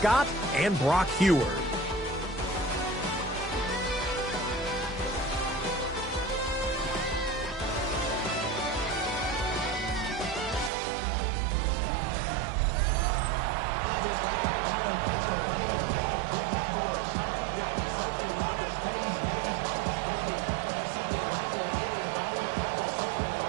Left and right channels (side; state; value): left; drops out; at 10.7 s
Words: and Brock Heward.